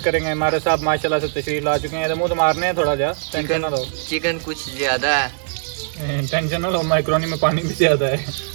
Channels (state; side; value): silent; left; 65 dB below the other